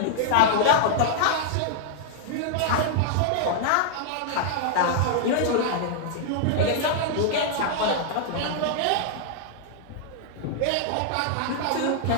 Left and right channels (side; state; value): both; different; correlation -0.01